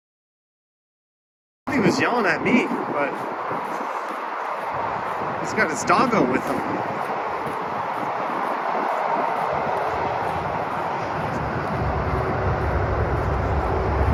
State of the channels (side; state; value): both; identical; correlation 1.00